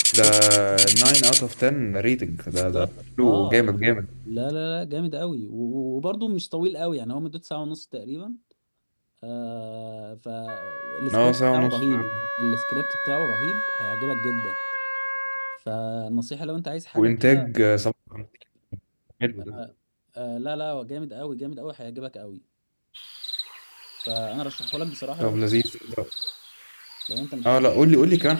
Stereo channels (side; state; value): both; inverted; correlation -1.00